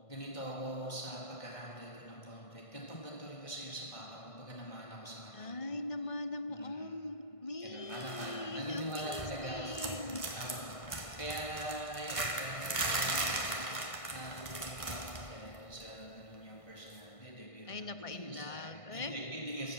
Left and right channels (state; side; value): late; right; 1.5 ms